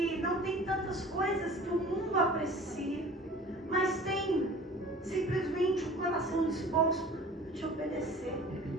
não tem tantas coisas que o mundo aprecia, mas tem simplesmente o coração disposto a te obedecer.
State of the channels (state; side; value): normal; both; correlation 0.44